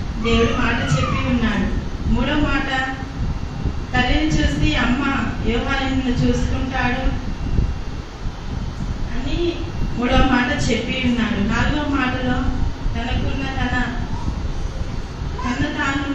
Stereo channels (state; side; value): identical; both; correlation 1.00